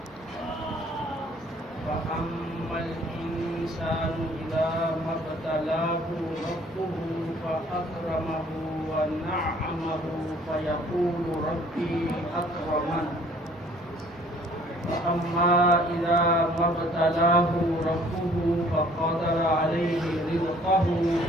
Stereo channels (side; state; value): both; normal; correlation 0.57